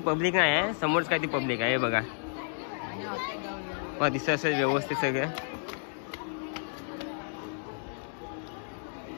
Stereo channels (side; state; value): right; silent; digital silence